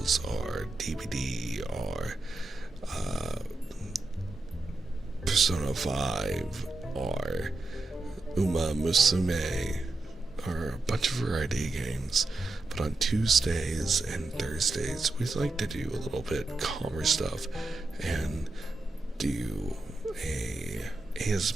or DBD or Persona 5 or Uma Musume or a bunch of variety games. But on Tuesdays and Thursdays we like to do a little bit calmer stuff and do a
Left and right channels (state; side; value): quieter; left; 3.1 dB